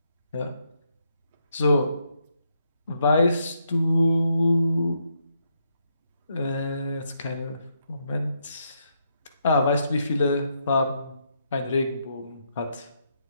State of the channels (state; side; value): inverted; both; correlation -0.78